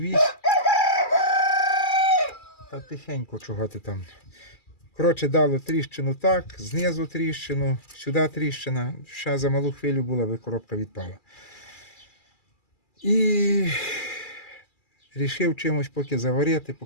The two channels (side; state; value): right; late; 2.3 ms